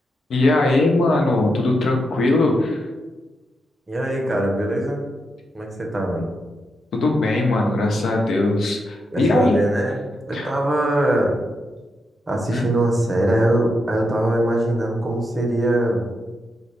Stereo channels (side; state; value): both; normal; correlation 0.84